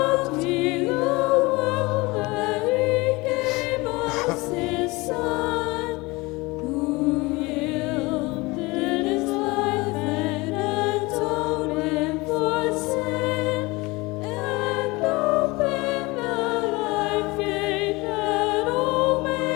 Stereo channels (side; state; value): right; quieter; 23.4 dB